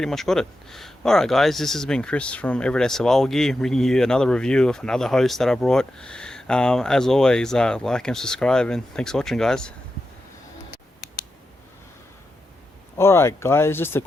much got it. Alright guys, this has been Chris from Everyday Survival Gear, bringing you another review of another host that I brought. As always, like and subscribe, and thanks for watching guys. Alright guys, just a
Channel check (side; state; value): both; normal; correlation 0.89